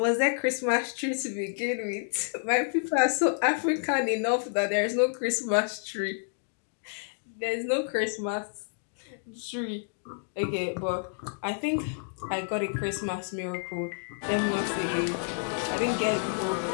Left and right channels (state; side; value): silent; right; digital silence